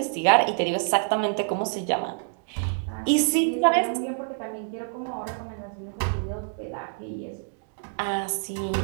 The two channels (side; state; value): left; silent; digital silence